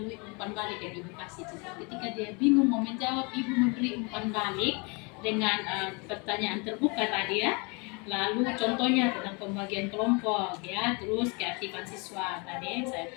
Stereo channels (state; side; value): quieter; right; 30.8 dB